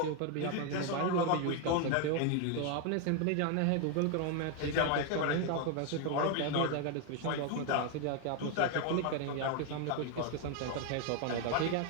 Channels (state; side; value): different; both; correlation 0.01